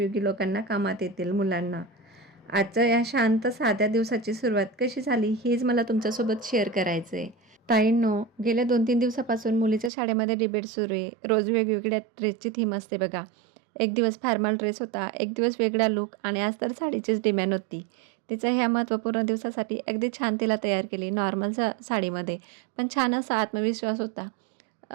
लोकांना कामात येतील मुलांना. आजच्या या शांत साध्या दिवसाची सुरुवात कशी झाली हेच मला तुमच्यासोबत शेअर करायचं आहे. ताईंनो, गेल्या 2-3 दिवसापासून मुलीच्या शाळेमध्ये डिबेट सुरू आहे. रोज वेगवेगळ्या ड्रेसची थीम असते बघा. एक दिवस फॉर्मल ड्रेस होता, एक दिवस वेगळा लूक आणि आज तर साडीचीच डिमांड होती. तिचं ह्या महत्त्वपूर्ण दिवसासाठी अगदी छान तिला तयार केली नॉर्मल साडीमध्ये. पण छान असा आत्मविश्वास होता.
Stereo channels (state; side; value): drops out; left; at 9.9 s